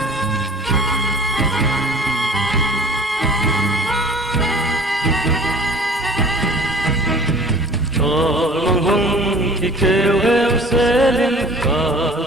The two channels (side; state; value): both; normal; correlation 0.47